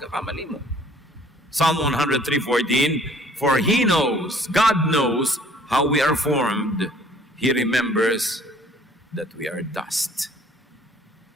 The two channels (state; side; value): normal; both; correlation 0.56